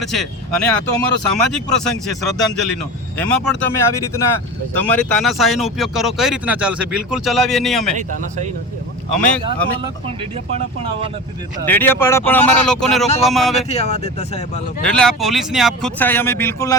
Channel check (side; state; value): both; normal; correlation 0.29